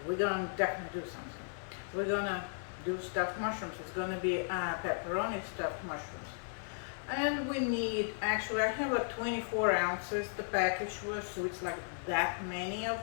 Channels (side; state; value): right; silent; digital silence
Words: we're gonna definitely do something. We're gonna do stuffed mushrooms. It's gonna be pepperoni stuffed mushrooms. And we need, actually I have like 24 ounces the package was, so it's like that many of